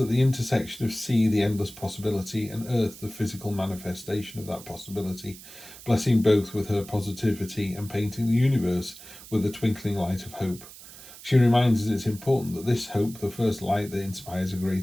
the intersection of sea, the endless possibility, and earth, the physical manifestation of that possibility, blessing both with her positivity and painting the universe with the twinkling light of hope. She reminds us it's important that this hope, the first light that inspires a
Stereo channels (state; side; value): noise; right; hiss, 17 dB below the sound